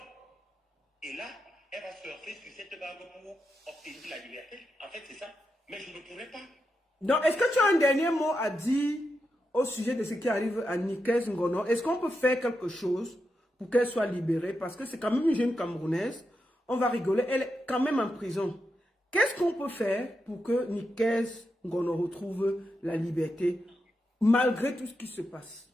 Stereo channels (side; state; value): both; normal; correlation 0.87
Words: Et là, elle va surfer sur cette vague pour obtenir la liberté. En fait, c'est ça. Mais je ne pourrais pas. Donc, est-ce que tu as un dernier mot à dire au sujet de ce qui arrive à Nikeze Ngono? Est-ce qu'on peut faire quelque chose pour qu'elle soit libérée? Parce que c'est quand même une jeune Camerounaise. On va rigoler. Elle est quand même en prison. Qu'est-ce qu'on peut faire pour que Nikeze Ngono retrouve la liberté malgré tout ce qui se passe?